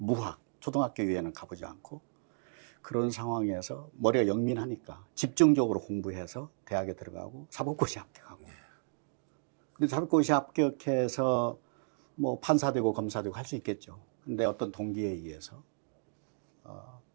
초등학교 이외에는 가보지 않고 그런 상황에서 머리가 영민하니까 집중적으로 공부해서 대학에 들어가고 사법고시 합격하고. 근데 사법고시 합격해서 뭐 판사 되고 검사 되고 할 수 있겠죠. 근데 어떤 동기에 의해서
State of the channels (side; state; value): left; silent; digital silence